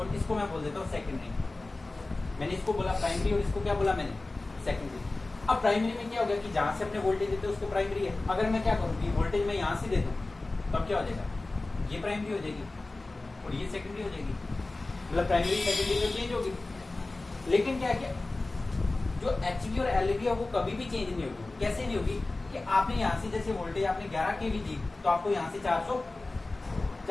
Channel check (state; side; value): quieter; right; 3.1 dB